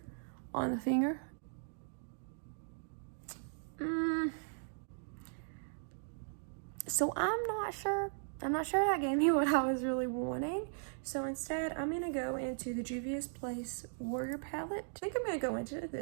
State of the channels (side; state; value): left; silent; digital silence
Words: on the finger. So I'm not sure that gave me what I was really wanting. So instead, I'm gonna go into the Juvia's Place Warrior palette. I think I'm gonna go into